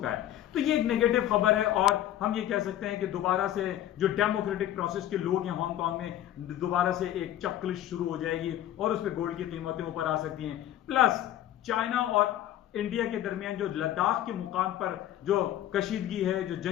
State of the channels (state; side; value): quieter; right; 12.4 dB